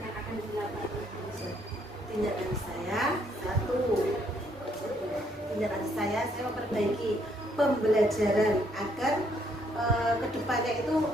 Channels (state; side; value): normal; both; correlation 0.69